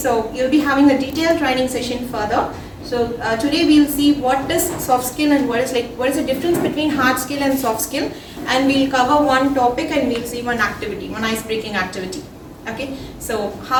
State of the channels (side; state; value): both; identical; correlation 1.00